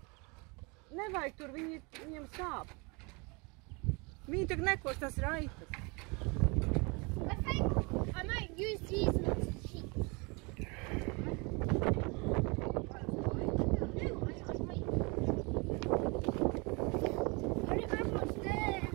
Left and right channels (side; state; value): left; quieter; 29.5 dB